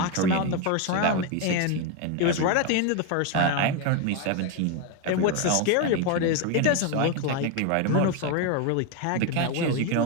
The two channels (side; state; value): both; different; correlation 0.02